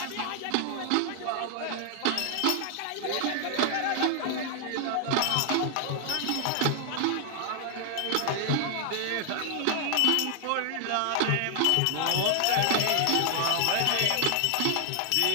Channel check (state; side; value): different; both; correlation 0.00